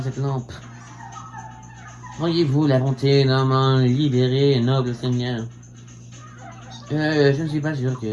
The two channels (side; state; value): both; identical; correlation 1.00